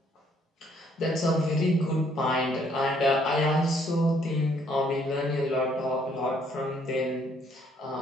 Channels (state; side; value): normal; both; correlation 0.66